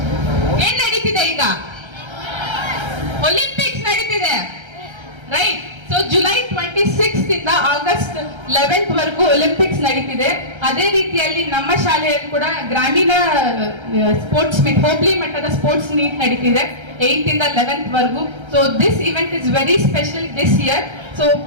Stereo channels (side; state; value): left; late; 1.3 ms